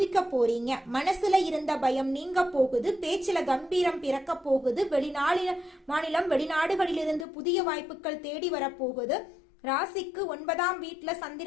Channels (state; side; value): drops out; right; at 7.2 s